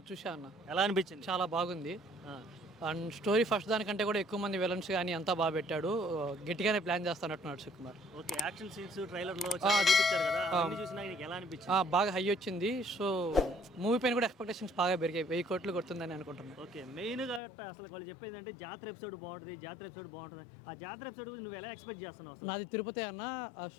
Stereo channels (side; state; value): right; drops out; at 17.4 s